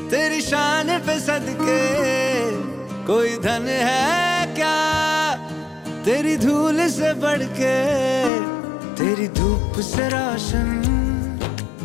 तेरी शान पे सदके, कोई धन है क्या तेरी धूल से बढ़ के। तेरी धूप से रोशन,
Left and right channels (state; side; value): drops out; right; at 8.3 s